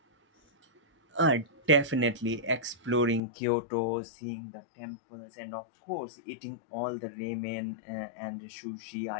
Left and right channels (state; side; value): drops out; right; at 3.2 s